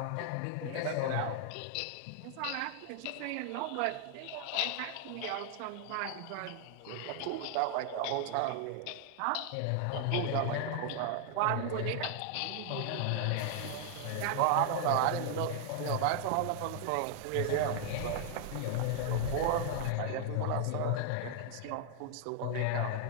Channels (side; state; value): both; different; correlation 0.00